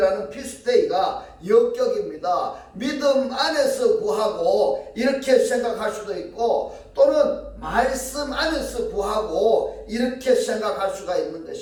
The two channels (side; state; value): both; identical; correlation 1.00